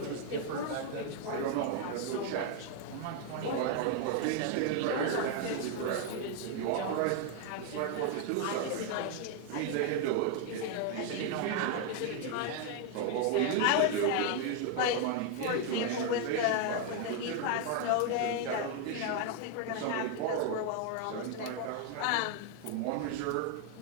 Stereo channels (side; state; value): both; different; correlation 0.01